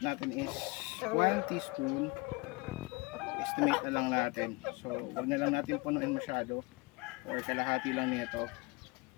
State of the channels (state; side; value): quieter; right; 25.6 dB